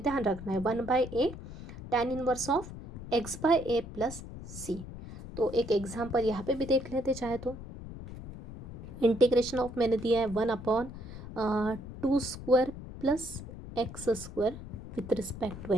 रखना है 1/a tan inverse of x by a plus सी। तो एक एग्जाम्पल यहाँ पे भी देख लेते चाहे तो। इंटीग्रेशन ऑफ मैंने दिया है 1/2 square plus x square with respect to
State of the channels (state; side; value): noise; left; rumble, 12 dB below the sound